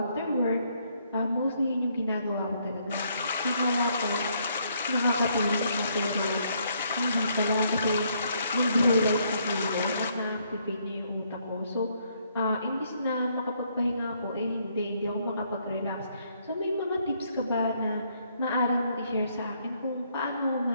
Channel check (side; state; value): both; inverted; correlation -0.71